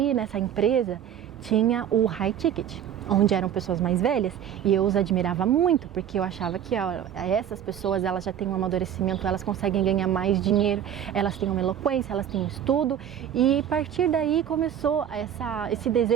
nessa empresa tinha o high ticket, onde eram pessoas mais velhas, e eu os admirava muito, porque eu achava que essas pessoas, elas já têm um amadurecimento, elas conseguem ganhar mais dinheiro, elas têm uma eloquência, elas têm um estudo, e a partir daí começou esse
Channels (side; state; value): left; quieter; 9.7 dB